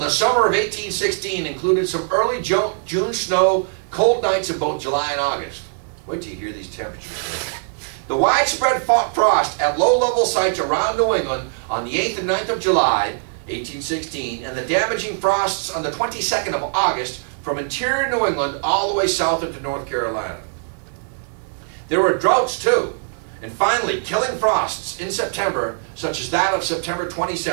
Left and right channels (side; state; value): left; silent; digital silence